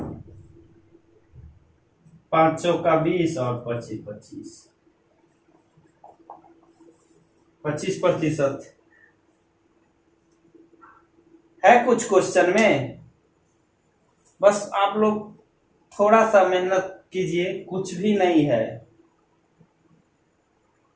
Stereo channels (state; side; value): identical; both; correlation 1.00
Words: 5 चौका 20 और 25% है कुछ क्वेश्चन में। बस आप लोग थोड़ा सा मेहनत कीजिए, कुछ भी नहीं है।